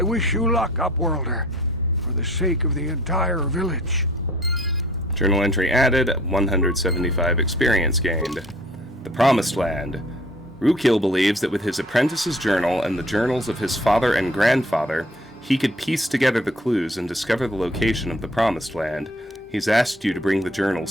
wish you luck, Upworlder, for the sake of the entire village. Journal entry added, 175 experience gained. The Promised Land. Rukil believes that with his apprentice's journal and the journals of his father and grandfather, he could piece together the clues and discover the location of the Promised Land. He's asked you to bring the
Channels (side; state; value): both; normal; correlation 0.53